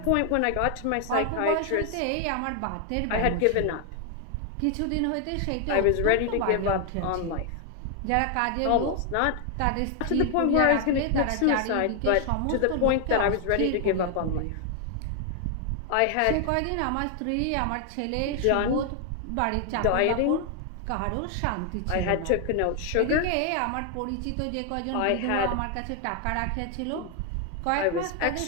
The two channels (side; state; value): both; different; correlation 0.00